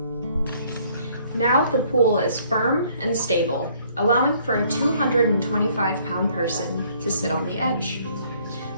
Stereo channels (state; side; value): inverted; both; correlation -0.62